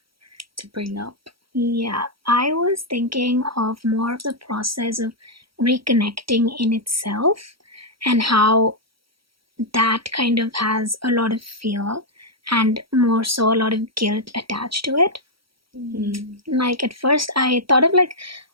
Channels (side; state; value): left; late; 0.75 ms